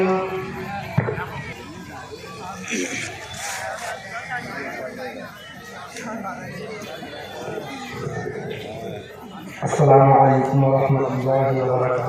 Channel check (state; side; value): identical; both; correlation 1.00